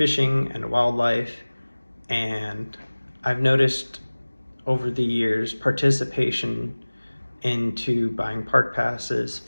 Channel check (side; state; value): both; inverted; correlation -1.00